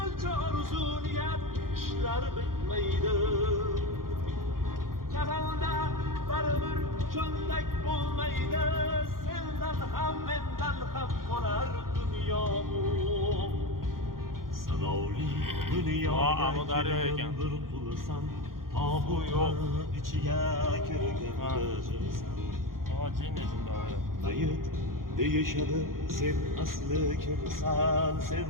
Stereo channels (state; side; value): late; left; 0.92 ms